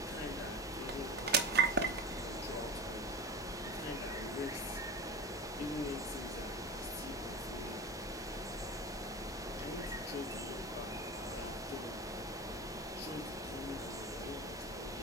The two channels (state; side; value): normal; both; correlation 0.27